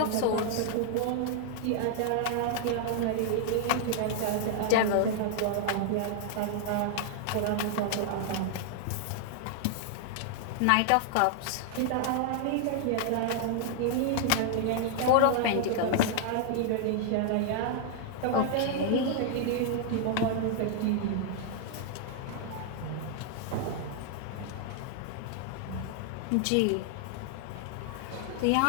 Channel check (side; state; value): both; different; correlation 0.00